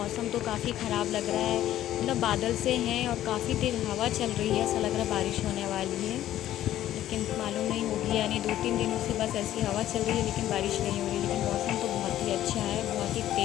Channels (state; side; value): quieter; right; 12.8 dB